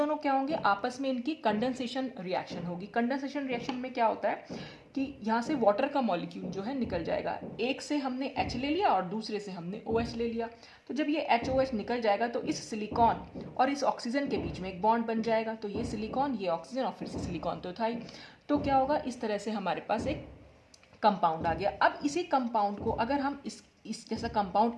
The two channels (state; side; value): identical; both; correlation 1.00